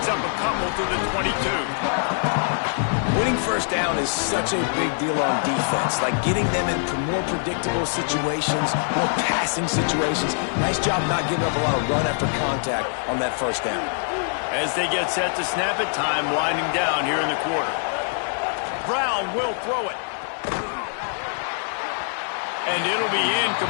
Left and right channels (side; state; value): right; silent; digital silence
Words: up a couple to the 22. Winning first down is such a big deal on defense. Like getting them into more predictable situations, more passing situations. Nice job not giving up a lot of run after contact on that first down. As they get set to snap it, time winding down here in the quarter. Brown will throw it. And it'll be